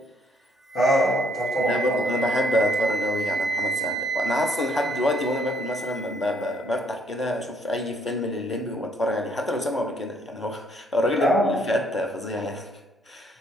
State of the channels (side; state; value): both; normal; correlation 0.67